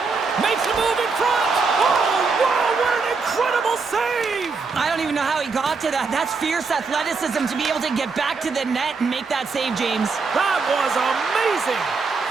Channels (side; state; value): left; quieter; 4.6 dB